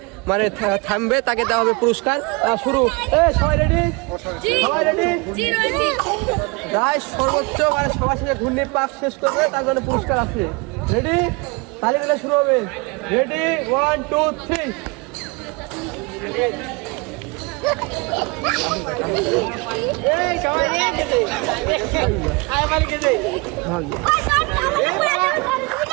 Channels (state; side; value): quieter; left; 27.9 dB